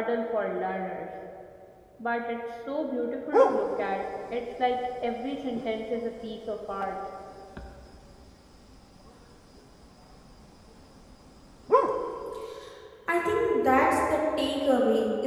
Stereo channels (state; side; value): identical; both; correlation 1.00